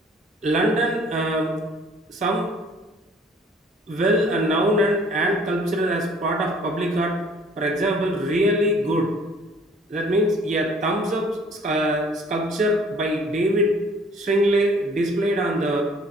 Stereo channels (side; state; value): both; normal; correlation 0.55